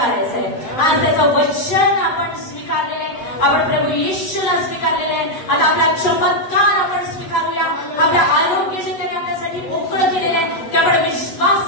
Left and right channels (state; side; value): late; right; 8.0 ms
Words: आहे. आज त्याचं वचन आपण स्वीकारलेलं आहे, आपण प्रभू येशूला स्वीकारलेलं आहे. आता आपला चमत्कार आपण स्वीकारूया. आपल्या आरोग्य जे त्याने आपल्यासाठी मोकळं केलेलं आहे ते आपण